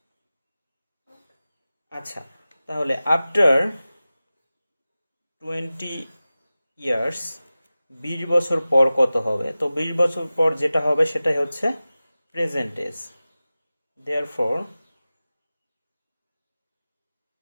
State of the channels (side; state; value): both; inverted; correlation -0.96